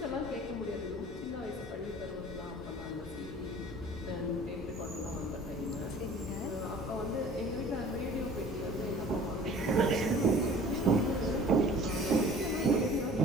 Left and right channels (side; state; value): both; normal; correlation 0.47